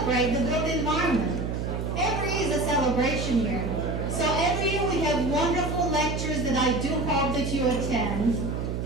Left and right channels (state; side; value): noise; right; hum, 3 dB below the sound